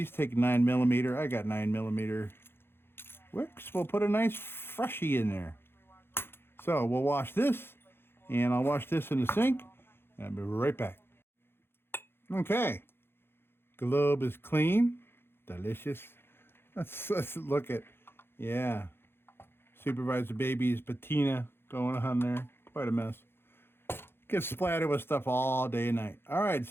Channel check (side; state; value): right; late; 0.11 ms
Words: take 9mm. I got 9mm wicks. We'll put a nice freshie in there. So we'll wash this, and I'll wash this in the sink, and I'll be right back. Okay, globe is clean, delicious. Let's look at, yeah, Supervisor Baby's patina going on there. Quite a mess. Gets splattered with stuff all day and night. All right,